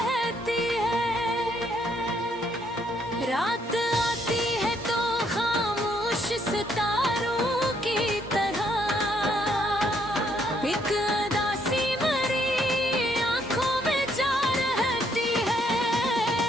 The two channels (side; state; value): both; normal; correlation 0.71